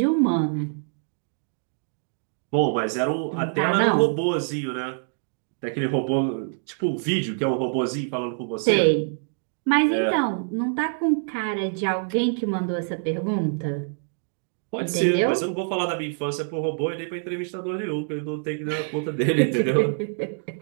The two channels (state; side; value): silent; left; digital silence